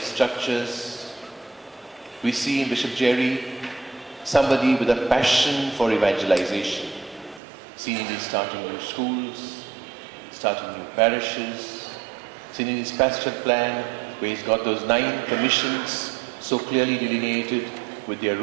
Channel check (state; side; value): drops out; left; at 7.4 s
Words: We see in Bishop Jerry somebody with a passion for evangelization, seen in his starting new schools, starting new parishes, seen in his pastoral plan where he's got those 9 commissions so clearly delineated with their